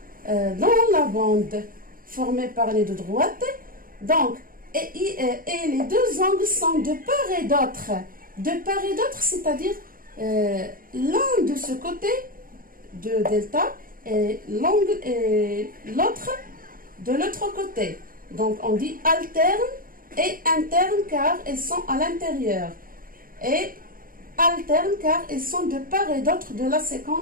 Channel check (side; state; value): left; late; 0.41 ms